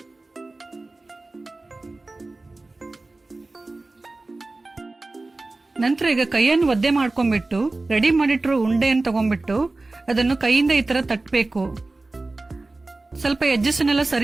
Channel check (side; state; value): left; quieter; 3.2 dB